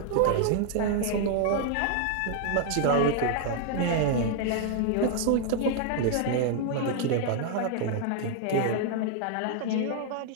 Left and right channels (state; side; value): different; both; correlation 0.00